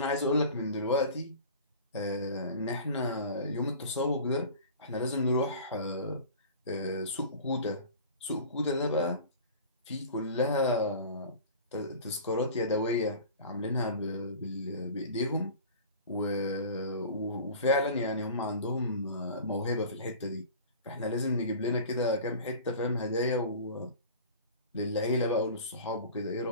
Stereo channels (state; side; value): inverted; both; correlation -0.39